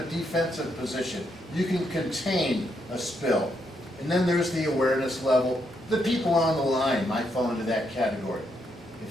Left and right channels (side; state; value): both; normal; correlation 0.78